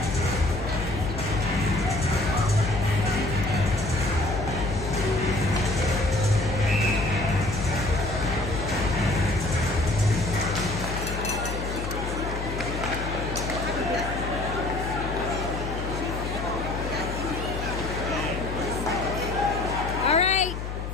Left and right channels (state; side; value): noise; left; hum, 5 dB below the sound